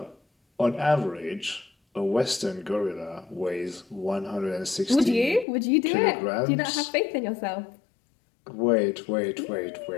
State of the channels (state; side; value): drops out; right; at 5.5 s